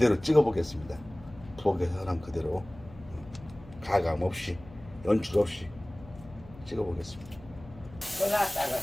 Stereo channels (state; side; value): noise; left; hum, 19 dB below the sound